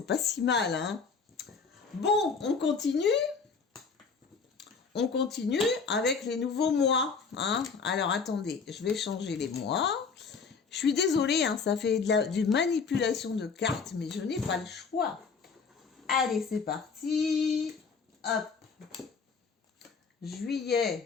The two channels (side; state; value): right; quieter; 5.3 dB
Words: pas si mal, hein. Bon, on continue. On continue avec les nouveaux mois. Hein. Alors, attendez, je vais changer les mois. Je suis désolée, hein, ça fait du manipulation de cartes, mais je n'ai pas le choix. Allez, c'est parti. Hop.